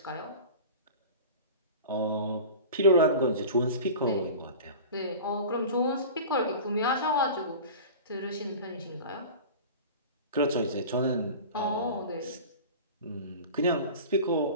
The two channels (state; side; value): inverted; both; correlation -0.36